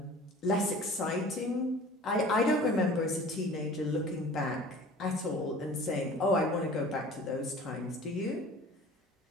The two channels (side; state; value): both; normal; correlation 0.44